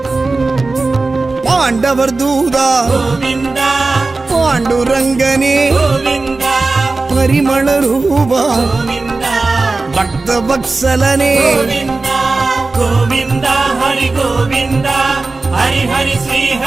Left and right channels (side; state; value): left; quieter; 3.6 dB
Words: பாண்டவர் தூதா गोविन्दा பாண்டுரங்கனே गोविन्दा பரிமள ரூபா गोविन्दा பக்த வத்சலனே गोविन्दा गोविन्दा हरि गोविन्दा हरि हरि श्री